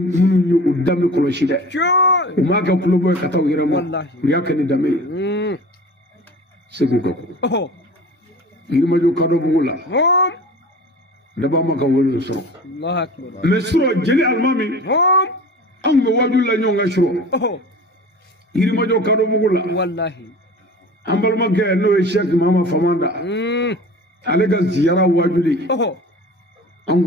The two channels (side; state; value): both; normal; correlation 0.39